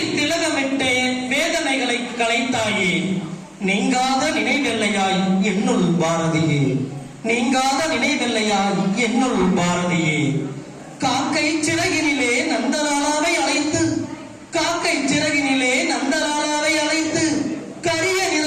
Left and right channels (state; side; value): identical; both; correlation 1.00